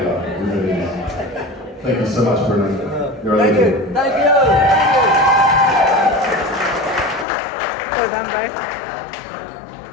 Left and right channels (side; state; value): right; drops out; at 7.2 s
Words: life. It really is. Thank you so much, Brunes. You're a legend. Thank you. Well done, both.